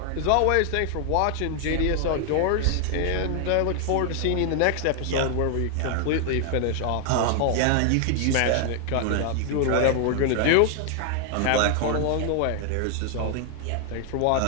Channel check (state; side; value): different; both; correlation 0.00